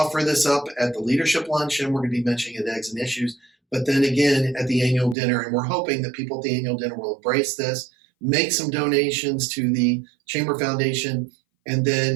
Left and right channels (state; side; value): drops out; left; at 5.2 s